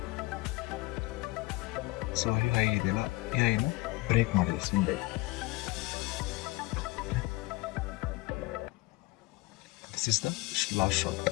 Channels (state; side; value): quieter; right; 21.6 dB